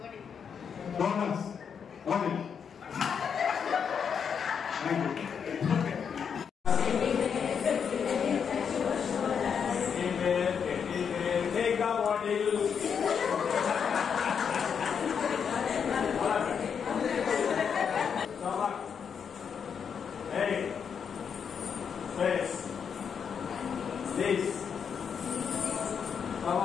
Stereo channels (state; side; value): quieter; right; 7.0 dB